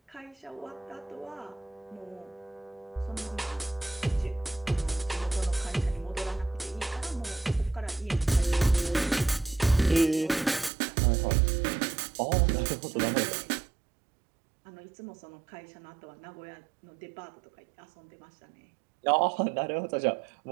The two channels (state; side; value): drops out; left; at 10.7 s